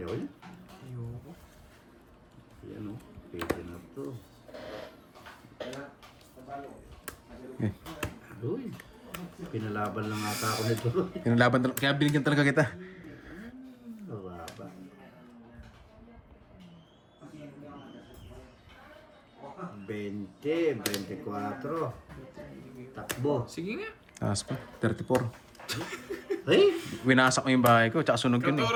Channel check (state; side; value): identical; both; correlation 1.00